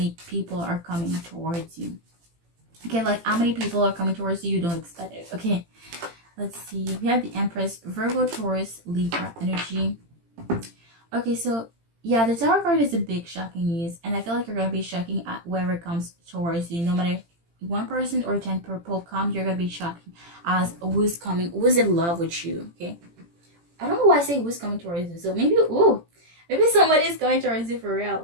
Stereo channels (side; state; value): left; late; 18 ms